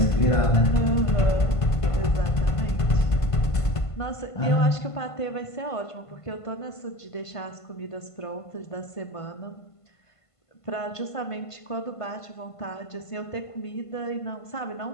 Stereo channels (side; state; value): right; late; 1.5 ms